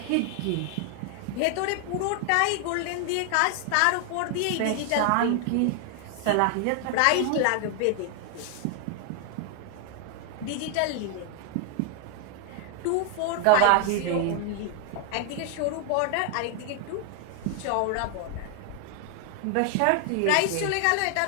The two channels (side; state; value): both; different; correlation 0.00